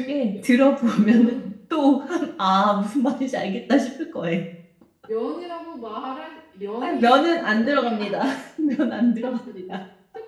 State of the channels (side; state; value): both; identical; correlation 1.00